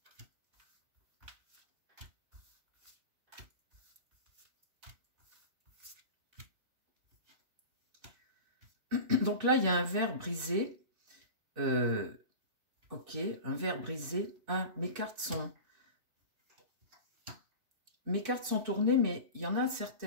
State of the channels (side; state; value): left; late; 3.5 ms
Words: donc là, il y a un verre brisé, ok, un verre brisé. Ah, mes cartes sont tournées, mais il y en a